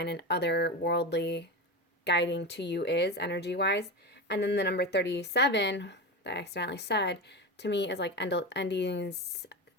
and otherworldly guiding to you is energy wise. And then the number 37 that I accidentally said to me is like endings,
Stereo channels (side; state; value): both; normal; correlation 0.21